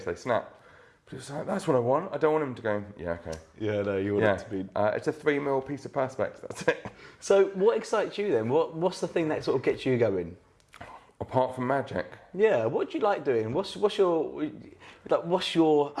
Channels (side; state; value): both; identical; correlation 1.00